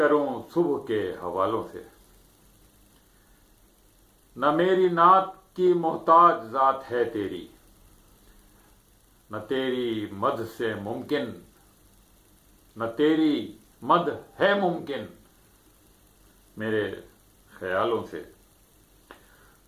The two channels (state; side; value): identical; both; correlation 1.00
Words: صبح کے حوالوں سے۔ نہ میری نعت کی محتاج ذات ہے تیری، نہ تیری مدح سے ممکن، نہ تیری مدح ہے ممکن میرے خیالوں سے۔